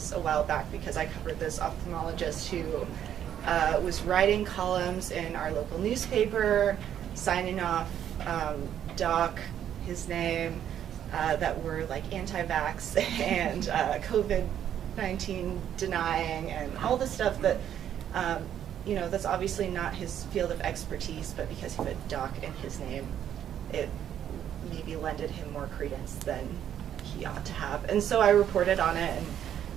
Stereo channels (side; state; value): left; quieter; 10.0 dB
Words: a while back because I covered this ophthalmologist who was writing columns in our local newspaper, signing off doc, his name, that were like anti-vax and COVID-19 denying and all the stuff that, you know, that's obviously not his field of expertise, but because he put doc in his name, it maybe lended him more credence than he ought to have. And so I reported on it, and